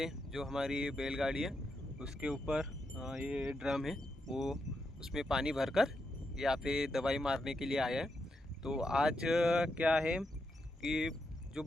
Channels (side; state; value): both; normal; correlation 0.83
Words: जो हमारी बैलगाड़ी है उसके ऊपर ये ड्रम है, वो उसमें पानी भरकर यहाँ पे दवाई मारने के लिए आया है। तो आज क्या है कि जो